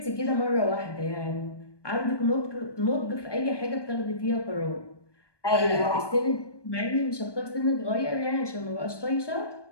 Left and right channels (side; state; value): right; late; 1.2 ms